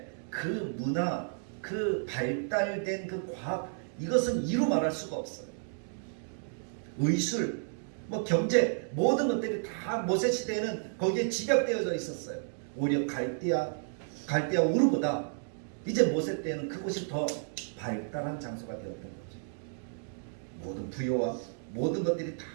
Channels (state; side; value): silent; left; digital silence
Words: 그 문화, 그 발달된 그 과학, 이것은 이루 말할 수가 없어요. 의술, 뭐 경제 모든 것들이 다 모세 시대에는 거기에 집약되어져 있었어요. 오히려 갈대아 우르보다 이제 모세 때에는 그곳이 더 발달한 장소가 되었던 거죠. 모든 부여와 모든 것들이 다